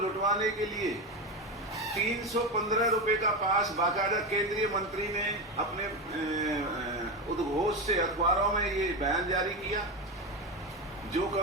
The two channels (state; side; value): normal; both; correlation 0.17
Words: के लिए 315 रुपए का पास बाकायदा केंद्रीय मंत्री ने अपने उद्घोष से अखबारों में ये बयान जारी किया। जो